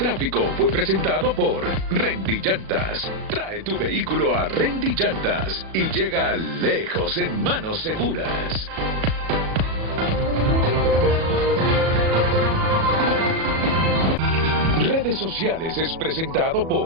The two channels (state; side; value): late; left; 37 ms